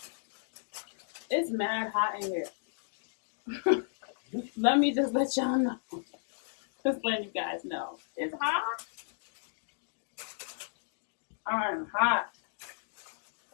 It's mad hot in here. Let me just let y'all know. Just letting you guys know. It's hot. I'm hot.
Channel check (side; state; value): right; silent; digital silence